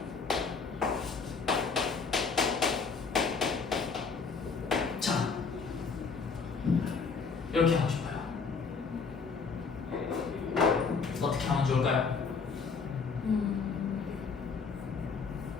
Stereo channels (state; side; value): quieter; right; 5.1 dB